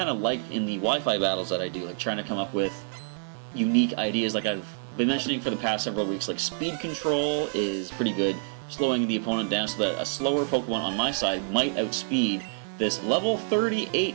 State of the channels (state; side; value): silent; left; digital silence